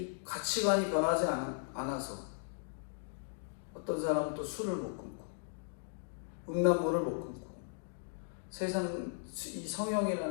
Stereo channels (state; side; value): silent; right; digital silence